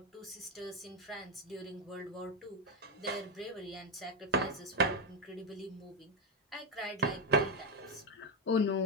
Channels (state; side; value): normal; both; correlation 0.08